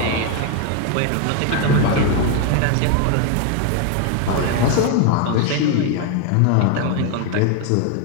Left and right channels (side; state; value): both; different; correlation 0.01